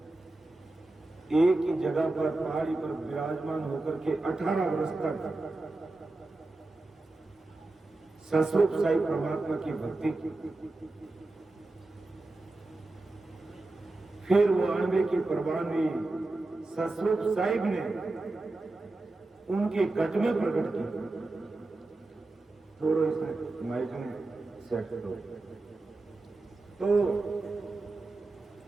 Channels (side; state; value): left; quieter; 3.0 dB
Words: एक ही जगह पर पहाड़ी पर विराजमान होकर के 18 वर्ष तक सस्वरूप साई परमात्मा की भक्ति की। फिर वो अणबे की परवानगी सस्वरूप साहिब ने उनके गज में प्रकट की। थोड़ा इसमें माइक में सेट करो। तो